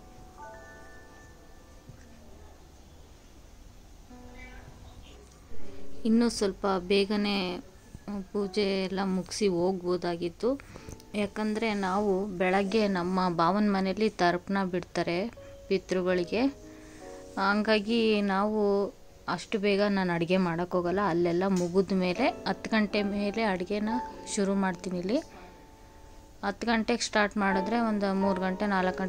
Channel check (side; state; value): both; identical; correlation 1.00